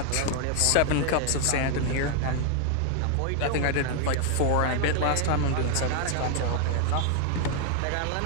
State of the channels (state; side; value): different; both; correlation 0.00